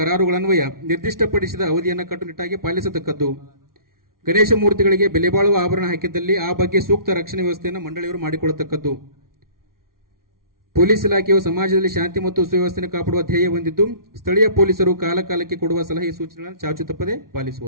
ನಿರ್ದಿಷ್ಟಪಡಿಸಿದ ಅವಧಿಯನ್ನು ಕಟ್ಟುನಿಟ್ಟಾಗಿ ಪಾಲಿಸತಕ್ಕದ್ದು. ಗಣೇಶ ಮೂರ್ತಿಗಳಿಗೆ ಬೆಲೆ ಬಾಳುವ ಆಭರಣ ಹಾಕಿದ್ದಲ್ಲಿ ಆ ಬಗ್ಗೆ ಸೂಕ್ತ ರಕ್ಷಣೆ ವ್ಯವಸ್ಥೆಯನ್ನು ಮಂಡಳಿಯವರು ಮಾಡಿಕೊಳ್ಳತಕ್ಕದ್ದು. ಪೊಲೀಸ್ ಇಲಾಖೆಯು ಸಮಾಜದಲ್ಲಿ ಶಾಂತಿ ಮತ್ತು ಸುವ್ಯವಸ್ಥೆ ಕಾಪಾಡುವ ಧ್ಯೇಯ ಹೊಂದಿದ್ದು ಸ್ಥಳೀಯ ಪೊಲೀಸರು ಕಾಲಕಾಲಕ್ಕೆ ಕೊಡುವ ಸಲಹೆ ಸೂಚನೆಗಳನ್ನು ಚಾಚು ತಪ್ಪದೆ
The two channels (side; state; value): left; late; 0.92 ms